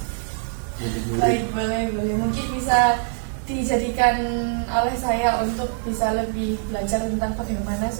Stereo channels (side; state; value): left; silent; digital silence